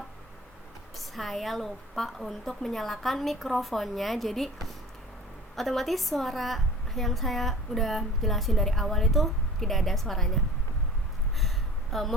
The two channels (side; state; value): both; normal; correlation 0.41